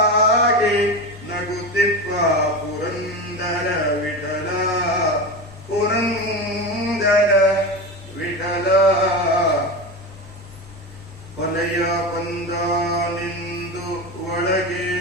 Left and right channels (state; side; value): normal; both; correlation 0.23